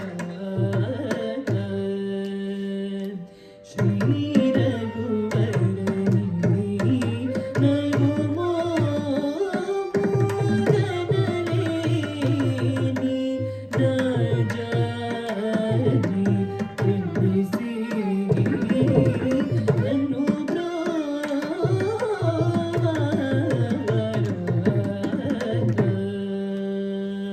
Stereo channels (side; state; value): both; identical; correlation 1.00